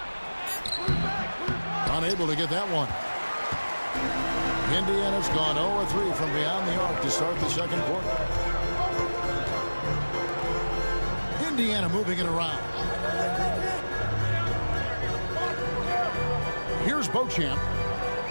Unable to get that one. Indiana's gone 0-3 from beyond the arc to start the second quarter. Indiana moving it around. Here's Beauchamp.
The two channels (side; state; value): both; inverted; correlation -1.00